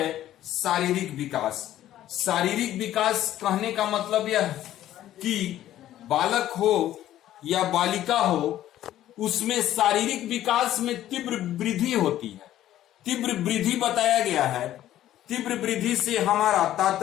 शारीरिक विकास। शारीरिक विकास कहने का मतलब यह कि बालक हो या बालिका हो, उसमें शारीरिक विकास में तीव्र वृद्धि होती है। तीव्र वृद्धि बताया गया है। तीव्र वृद्धि से हमारा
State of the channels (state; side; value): quieter; right; 12.9 dB